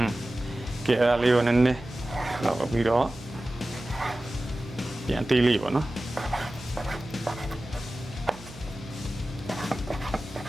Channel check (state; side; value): noise; right; hum, 18 dB below the sound